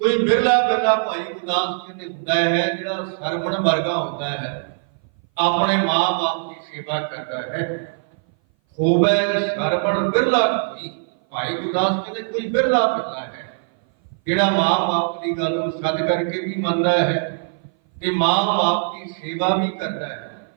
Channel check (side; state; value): left; silent; 58 dB below the other